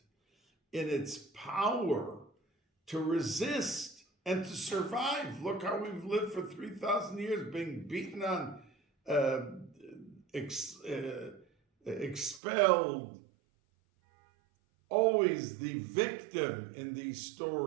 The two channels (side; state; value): left; drops out; at 12.4 s